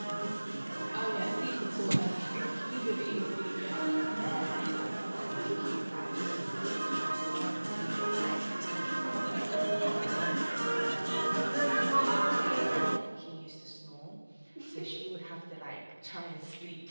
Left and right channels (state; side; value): inverted; both; correlation -1.00